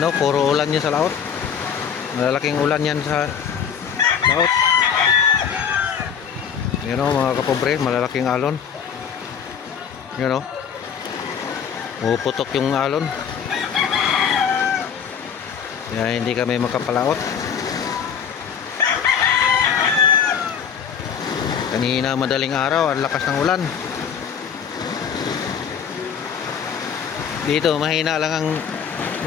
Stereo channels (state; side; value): quieter; right; 7.6 dB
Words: o, puro ulan yan sa laot. Malalaking ulan yan sa laot. Ayan o mga kapobre, malalaking alon. Ayan o. Puputok yung alon. Kaya hindi kami makapalaot. Kanina madaling araw, ang lakas ng ulan. Dito mahina lang ang